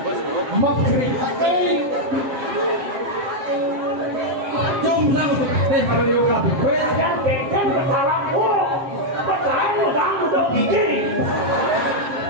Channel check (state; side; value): late; left; 7.6 ms